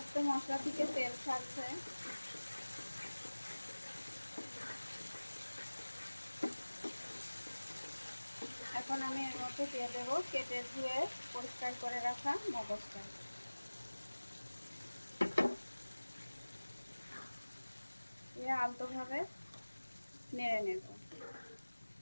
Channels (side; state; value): both; inverted; correlation -1.00